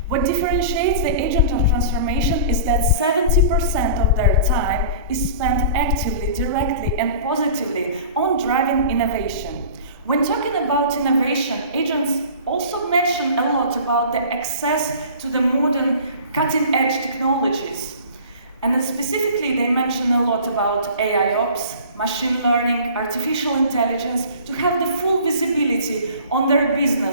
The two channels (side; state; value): both; inverted; correlation -0.42